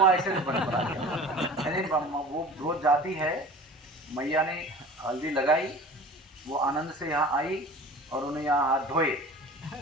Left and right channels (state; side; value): normal; both; correlation 0.40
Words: ऐसे बना दिया। यानी वो रोज जाती है, मैया ने हल्दी लगाई, वो आनंद से यहाँ आई और उन्हें यहाँ हाथ धोए,